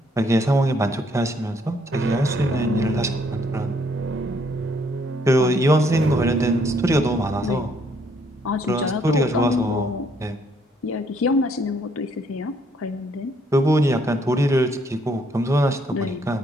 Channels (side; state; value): both; normal; correlation 0.68